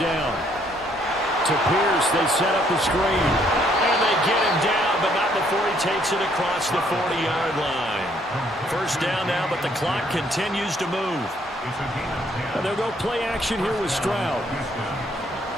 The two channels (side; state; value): both; normal; correlation 0.67